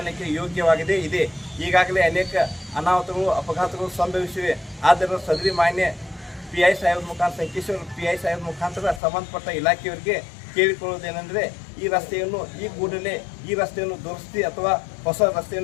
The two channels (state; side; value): drops out; right; at 9.0 s